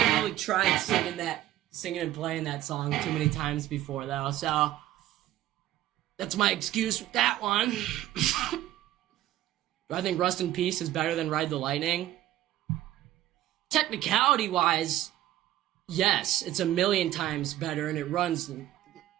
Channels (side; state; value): left; quieter; 14.1 dB